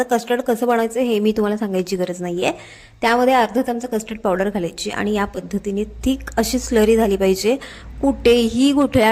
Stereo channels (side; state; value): both; identical; correlation 1.00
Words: कस्टर्ड कसं बनवायचं हे मी तुम्हाला सांगायची गरज नाही आहे. त्यामध्ये अर्धा चमचा कस्टर्ड पावडर घालायची आणि या पद्धतीने थिक अशी स्लरी झाली पाहिजे, कुठेही